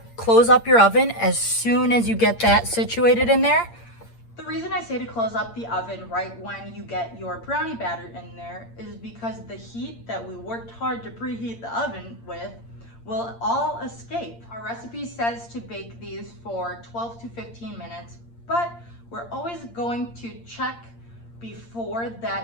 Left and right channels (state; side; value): late; right; 8.7 ms